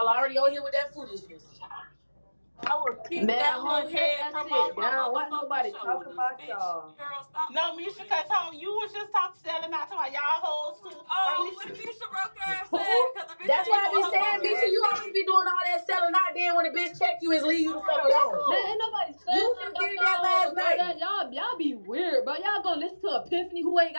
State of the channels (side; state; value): both; inverted; correlation -1.00